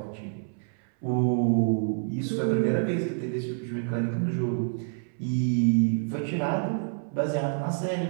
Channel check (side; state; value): left; silent; 60 dB below the other